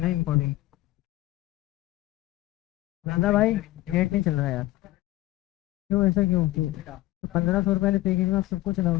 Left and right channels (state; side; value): quieter; right; 17.2 dB